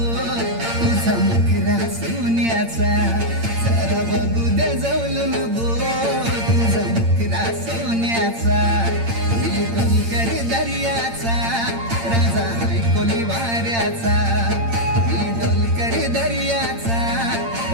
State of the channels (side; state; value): left; late; 8.8 ms